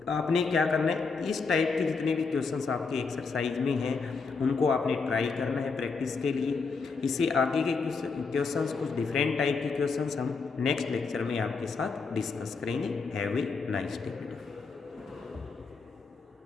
आपने क्या करना है, इस टाइप के जितने भी क्वेश्चंस आपके एक्सरसाइज में हैं उनको आपने ट्राई करना है प्रैक्टिस के लिए। इससे आगे के क्वेश्चंस, कुछ डिफरेंट टाइप के क्वेश्चंस हम नेक्स्ट लेक्चर में आपके साथ डिस्कस करेंगे। Have a nice day.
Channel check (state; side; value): quieter; right; 4.7 dB